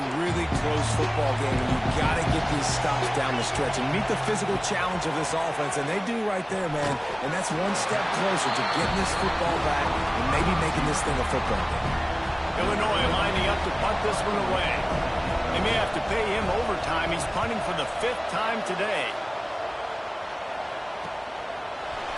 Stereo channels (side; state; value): both; identical; correlation 1.00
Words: really close football game, and you've got to get these stops down the stretch and meet the physical challenge of this offense, and they do right there, man. And that's one step closer to getting this football back and maybe making this thing a football game. Illinois lining up to punt this one away. They may have to pay him overtime. He's punting for the 5th time today.